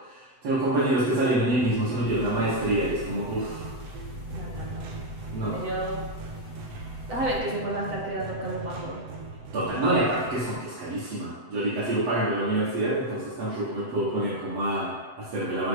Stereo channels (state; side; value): late; left; 7.9 ms